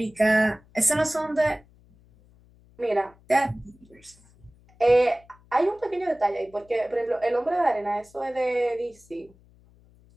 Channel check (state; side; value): noise; left; hum, 29 dB below the sound